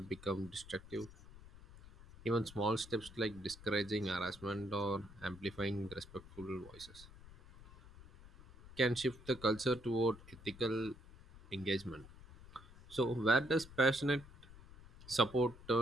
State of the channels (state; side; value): noise; left; rumble, 19 dB below the sound